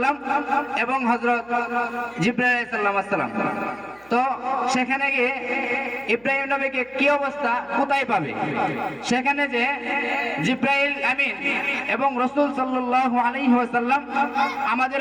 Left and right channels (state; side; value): noise; right; hum, 30 dB below the sound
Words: এবং হযরত জিবরাইল আলাইহিস সালাম। তো সেখানে গিয়ে ইব্রাহিম নবীকে কি অবস্থা, কোথায় পাবে? সেখানে যে জিবরাইল আমিন এবং রাসূল সাল্লাল্লাহু আলাইহি ওয়াসাল্লাম,